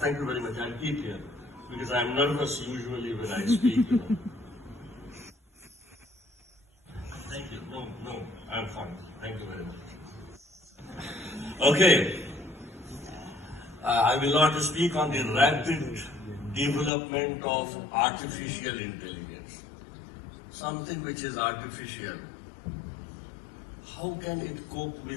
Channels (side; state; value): right; drops out; at 16.9 s